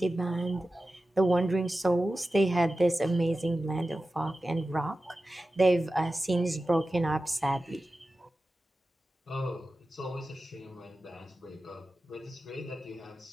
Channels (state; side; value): normal; both; correlation 0.94